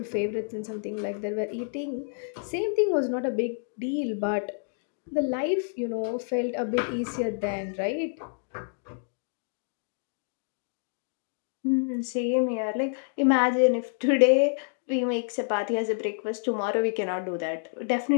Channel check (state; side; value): silent; right; digital silence